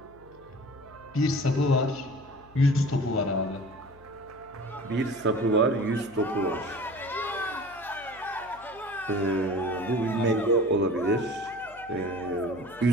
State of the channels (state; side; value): noise; left; hum, 24 dB below the sound